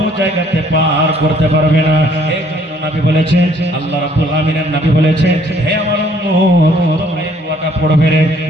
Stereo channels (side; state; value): both; normal; correlation 0.62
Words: জায়গাতে পার করতে পারবে না। এই জন্য নবী বলেছেন, আল্লাহ রাব্বুল আমিনের নবী বলেছেন, হে আমার উম্মত তোমরা এই দোয়াটা পড়বে রে,